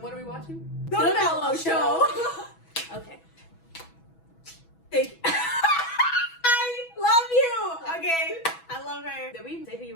what are we watching? The Mellow Show. Okay. Thank you. I love you. Okay. I love her. Did we say who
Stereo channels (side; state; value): right; late; 6.1 ms